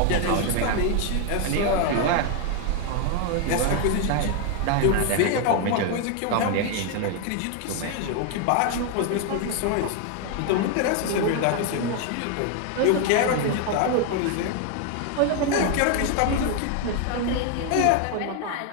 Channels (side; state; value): both; different; correlation 0.01